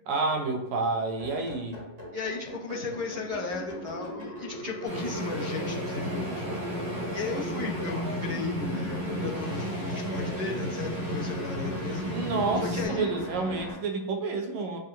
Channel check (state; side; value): late; left; 11 ms